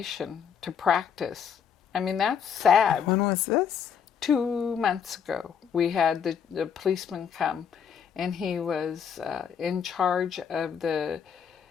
to practice. I mean, that's sad. When was this? 2 months ago, we had the policeman come, and he was in charge of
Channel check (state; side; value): quieter; right; 7.5 dB